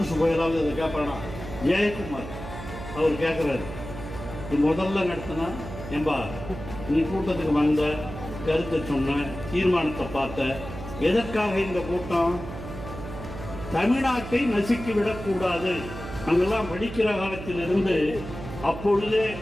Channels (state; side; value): noise; right; hum, 10 dB below the sound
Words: போயலாவது அதை கேட்பானா? ஜெயக்குமார் அவர் கேட்குறாரு, முதல்ல நடத்தினா ஏம்பா நீ கூட்டத்துக்கு வந்த, கருத்தை சொன்ன, தீர்மானத்தை பார்த்த, எதற்காக இந்த கூட்டம்? தமிழ்நாட்டை நசுக்கி விடக்கூடாது. அங்கெல்லாம் படிக்கிற காலத்திலிருந்து அப்பொழுதே